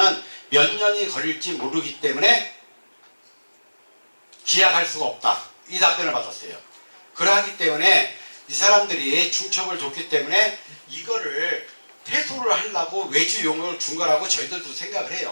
몇 년이 걸릴지 모르기 때문에 기약할 수가 없다. 이 답변을 받았어요. 그러하기 때문에 이 사람들이 중첩을 줬기 때문에 이거를 퇴소를 하려고 외주 용역을 준 거라고 저희들도 생각을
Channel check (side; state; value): both; inverted; correlation -1.00